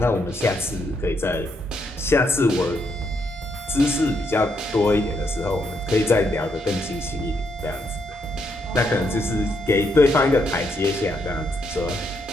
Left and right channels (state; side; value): normal; both; correlation 0.77